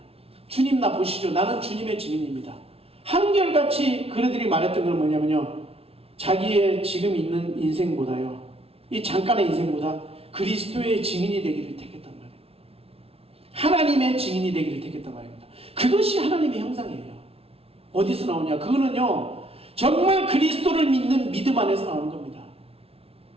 주님 나 보시죠. 나는 주님의 증인입니다. 한결같이 그들이 말했던 건 뭐냐면요 자기의 지금 있는 인생보다요 이 잠깐의 인생보다 그리스도의 증인이 되기를 택했단 말이에요. 하나님의 증인이 되기를 택했단 말입니다. 그것이 하나님의 형상이에요. 어디서 나오냐? 그거는요 정말 그리스도를 믿는 믿음 안에서 나오는 겁니다.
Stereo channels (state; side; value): late; left; 0.28 ms